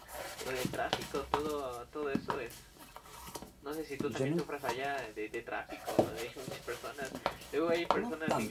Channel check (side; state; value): both; identical; correlation 1.00